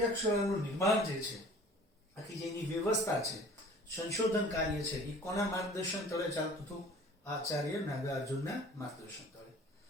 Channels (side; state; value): both; normal; correlation 0.48